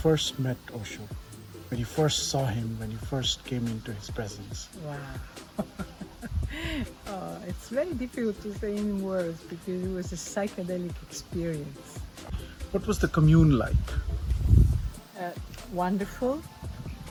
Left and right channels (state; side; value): identical; both; correlation 1.00